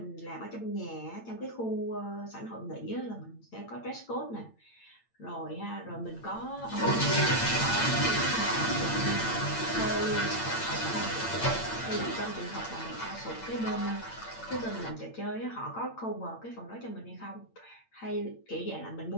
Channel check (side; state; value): right; late; 8.8 ms